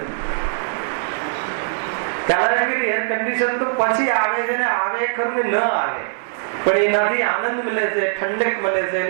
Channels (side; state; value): left; silent; 57 dB below the other